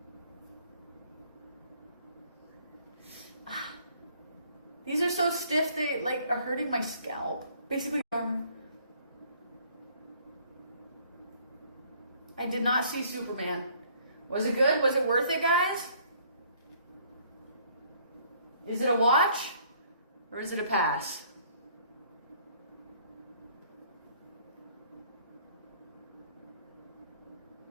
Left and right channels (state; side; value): inverted; both; correlation -0.61